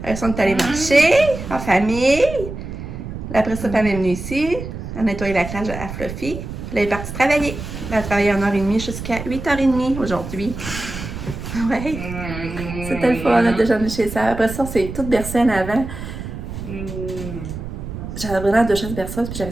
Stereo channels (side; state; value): right; noise; rumble, 8 dB below the sound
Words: Elles sont allées marcher, en famille. Après ça, elle est venue ici. Elle a nettoyé la crèche à Fluffy. Puis elle est partie travailler. Elle a travaillé 1h30 jusqu'à 8h30 aujourd'hui. Ouais, c'était le fun de déjeuner chez ça. Après ça, c'est toute bercée en avant. J'avais vraiment 2 chaises berceuses, puis j'avais